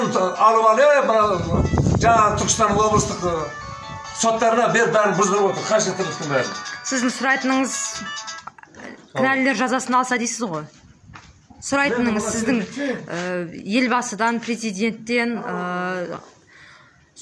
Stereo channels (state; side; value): identical; both; correlation 1.00